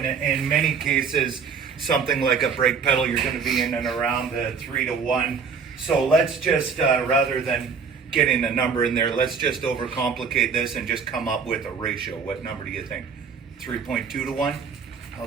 in many cases, something like a brake pedal, you're going to be in and around the 3-to-1. So let's just, rather than getting a number in there, let's just overcomplicate this and just come up with a ratio. What number do you think? 3.2-to-1?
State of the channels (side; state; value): left; quieter; 5.9 dB